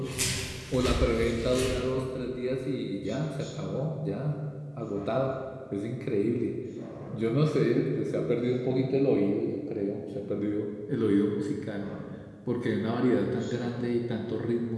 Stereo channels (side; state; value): both; identical; correlation 1.00